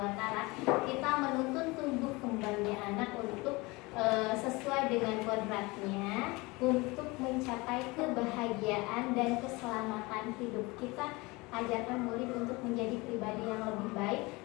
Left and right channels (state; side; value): quieter; right; 24.0 dB